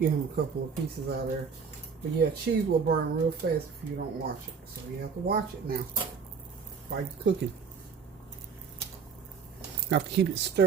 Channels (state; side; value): quieter; left; 5.9 dB